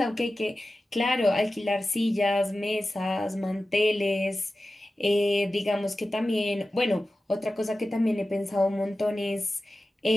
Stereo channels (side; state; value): both; normal; correlation 0.94